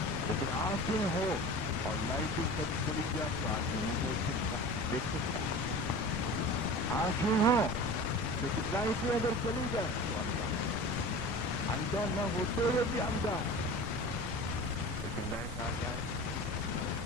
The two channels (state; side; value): normal; both; correlation 0.36